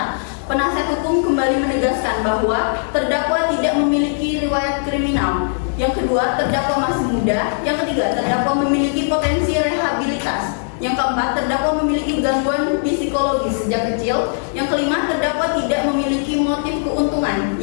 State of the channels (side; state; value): right; silent; digital silence